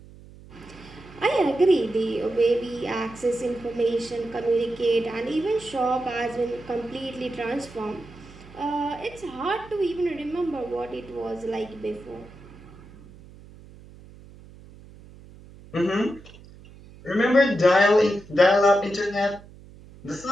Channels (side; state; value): right; noise; hum, 20 dB below the sound